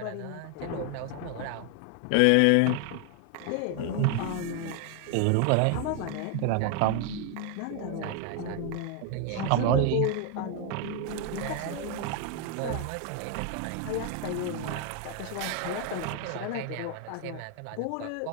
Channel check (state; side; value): different; both; correlation 0.01